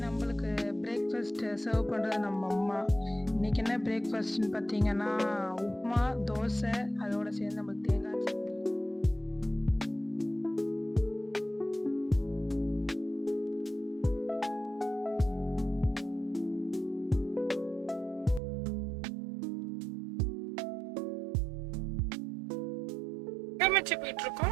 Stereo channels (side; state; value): left; drops out; at 18.4 s